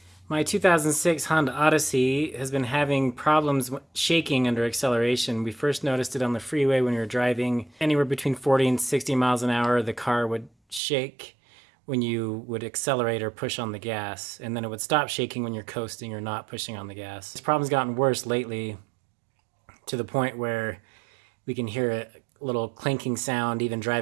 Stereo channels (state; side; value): drops out; left; at 10.8 s